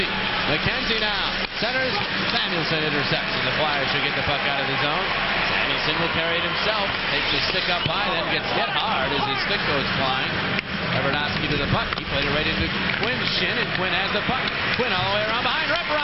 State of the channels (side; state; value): both; identical; correlation 1.00